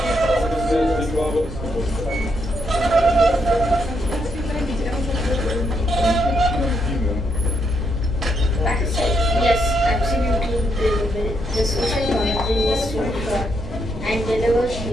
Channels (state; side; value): noise; right; rumble, 13 dB below the sound